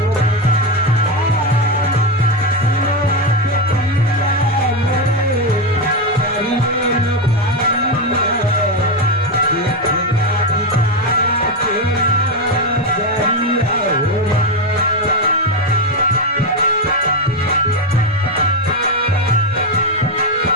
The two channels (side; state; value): both; normal; correlation 0.09